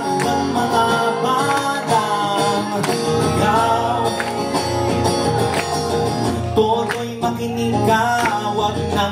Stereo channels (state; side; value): identical; both; correlation 1.00